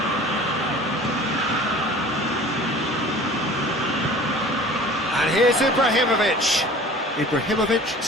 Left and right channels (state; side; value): normal; both; correlation 0.44